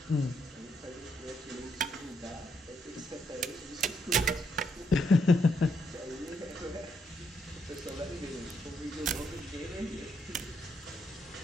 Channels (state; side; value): normal; both; correlation 0.76